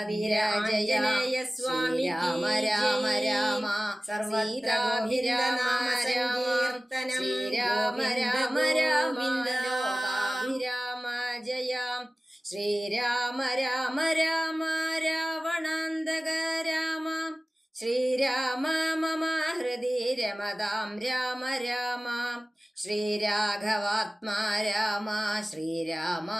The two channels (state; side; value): normal; both; correlation 0.96